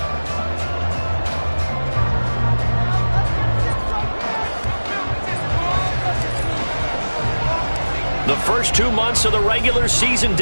The first 2 months of the regular season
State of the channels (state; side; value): inverted; both; correlation -1.00